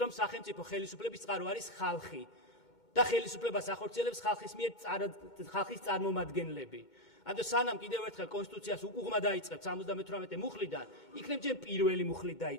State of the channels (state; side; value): late; right; 2.2 ms